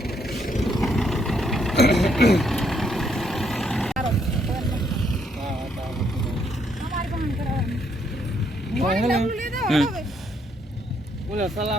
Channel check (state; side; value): normal; both; correlation 0.72